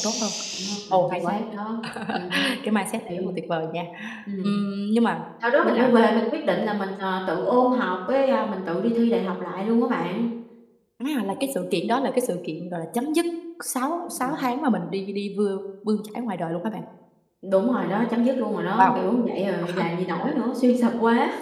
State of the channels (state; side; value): identical; both; correlation 1.00